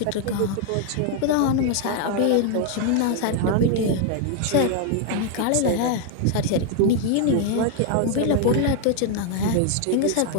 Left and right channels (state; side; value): different; both; correlation 0.00